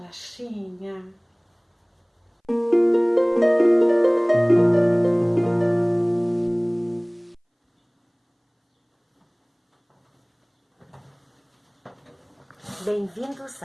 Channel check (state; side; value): identical; both; correlation 1.00